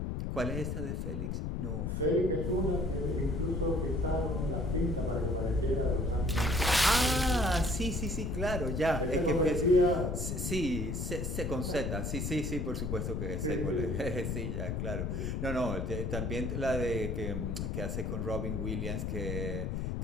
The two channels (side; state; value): left; noise; rumble, 2 dB below the sound